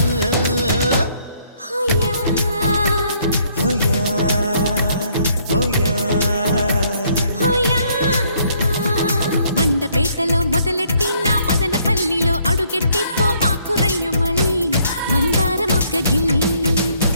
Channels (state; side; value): inverted; both; correlation -0.67